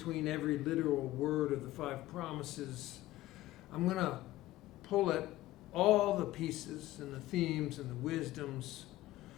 every literal word of the five promises, I'm going to pull at all the pieces and the themes and the wisdoms,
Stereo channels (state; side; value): quieter; right; 16.2 dB